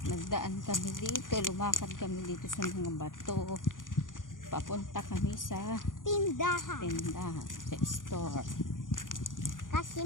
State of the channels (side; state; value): right; late; 0.89 ms